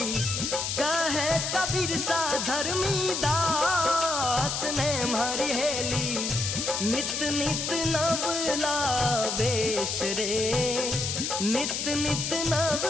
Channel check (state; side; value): noise; left; hiss, 2 dB below the sound